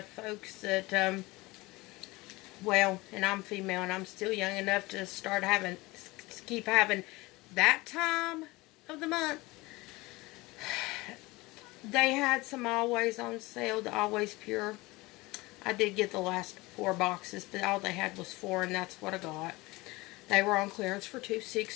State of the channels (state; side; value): quieter; right; 21.9 dB